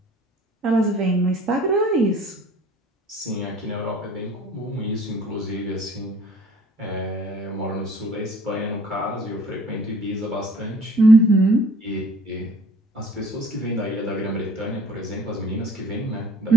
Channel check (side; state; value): both; normal; correlation 0.52